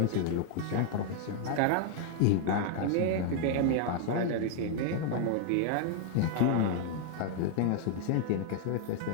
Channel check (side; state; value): both; different; correlation 0.00